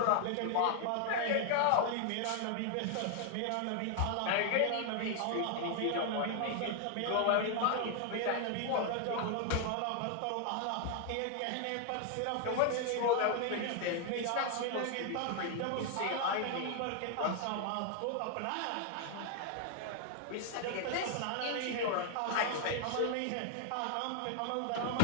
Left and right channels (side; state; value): both; different; correlation 0.00